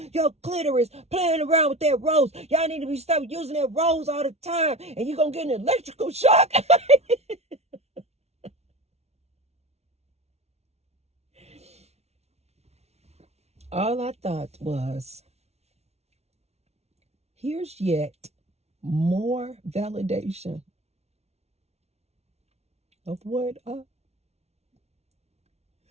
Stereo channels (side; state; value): left; late; 0.31 ms